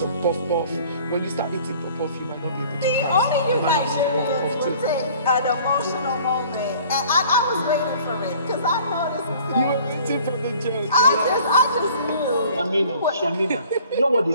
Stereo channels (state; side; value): inverted; both; correlation -0.51